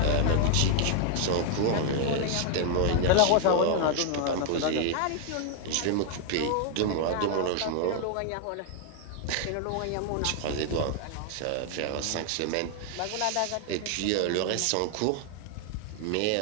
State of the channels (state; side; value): different; both; correlation 0.00